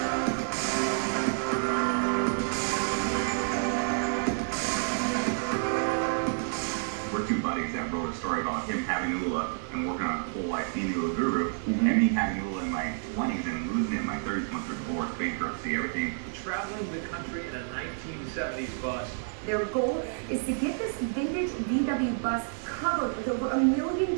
We're 2 buddies that wrote a story about him having Oola and working on a whole life being Oola guru, and me having Oola in my 20s and losing it in my 30s once through divorce, bankruptcy, everything. Traveling the country in a 1970s bus. Their goal is to get this vintage VW bus covered with over 1 million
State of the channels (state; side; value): silent; left; digital silence